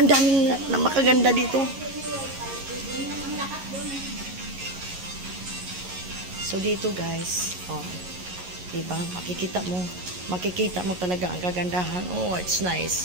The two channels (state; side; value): late; left; 11 ms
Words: daming na makaganda dito. So, dito, guys. Oh, diba? Makikita mo talaga ang kagandahan. Oh, it's